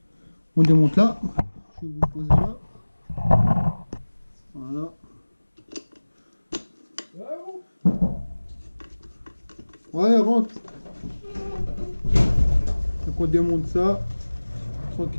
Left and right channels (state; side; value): inverted; both; correlation -1.00